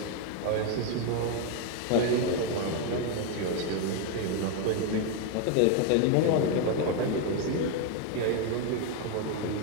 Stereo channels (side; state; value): both; different; correlation 0.01